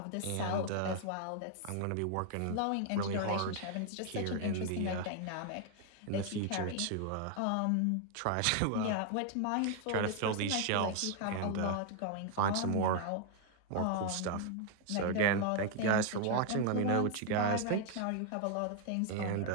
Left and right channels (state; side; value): different; both; correlation 0.00